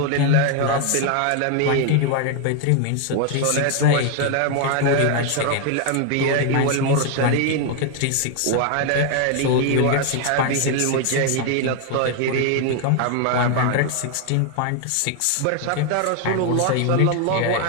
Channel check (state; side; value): different; both; correlation 0.01